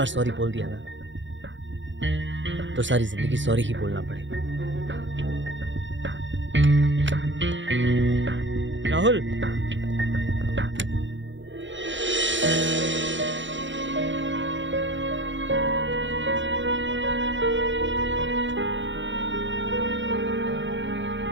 सॉरी बोल दिया ना तो सारी जिंदगी सॉरी ही बोलना पड़ेगा। राहुल,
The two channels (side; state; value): left; late; 0.54 ms